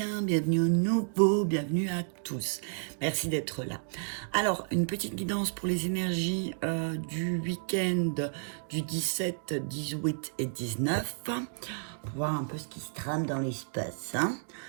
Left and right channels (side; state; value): left; silent; digital silence